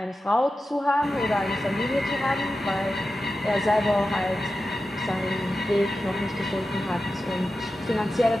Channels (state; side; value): normal; both; correlation 0.92